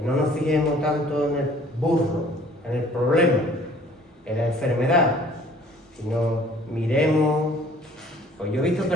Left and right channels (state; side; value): normal; both; correlation 0.54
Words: no nos fijemos tanto en el burro, en el problema, en la enfermedad, sino miremos. Pues yo he visto